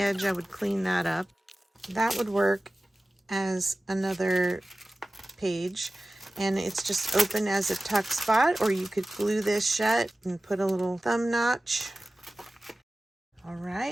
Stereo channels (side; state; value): both; normal; correlation 0.96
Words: I would clean that up. That would work as another page, and it's just open as a tuck spot, or you could glue this shut and put a little thumb notch. All